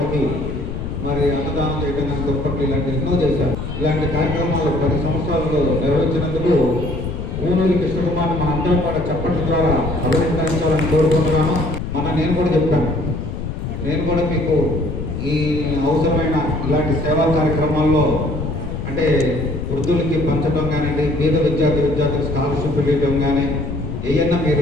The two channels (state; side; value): noise; left; rumble, 6 dB below the sound